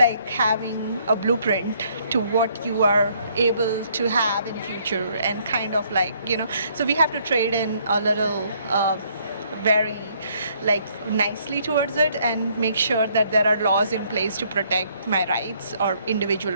having a blueprint to what you are able to have in future, and kind of like, you know, so we have to trade in a little very like nicely towards it and make sure that there are laws in place to protect my rights or individual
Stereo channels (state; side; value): inverted; both; correlation -0.66